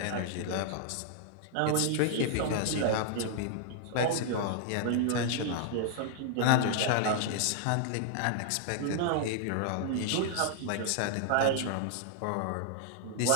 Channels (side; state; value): both; different; correlation -0.01